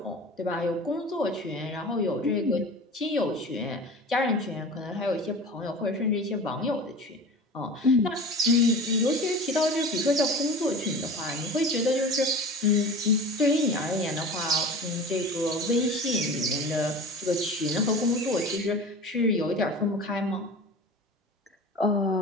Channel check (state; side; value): normal; both; correlation 0.36